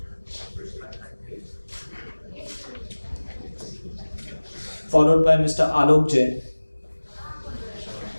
Followed by Mr. Alok Jain.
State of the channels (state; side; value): inverted; both; correlation -1.00